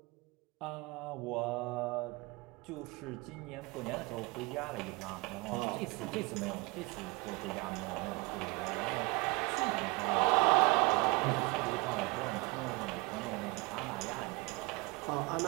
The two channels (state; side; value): quieter; left; 26.0 dB